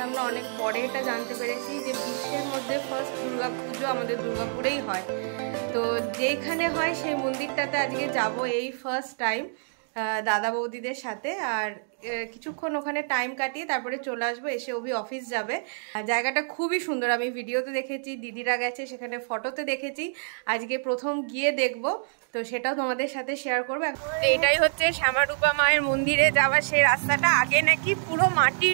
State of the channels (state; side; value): silent; left; digital silence